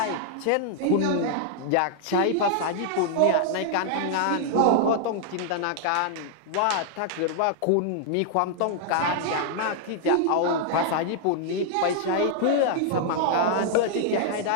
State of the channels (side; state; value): both; different; correlation -0.01